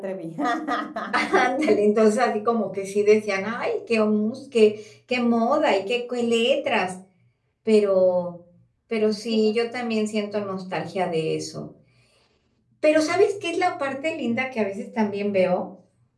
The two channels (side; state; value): both; identical; correlation 1.00